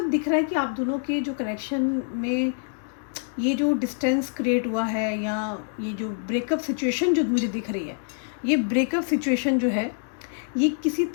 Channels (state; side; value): silent; right; 61 dB below the other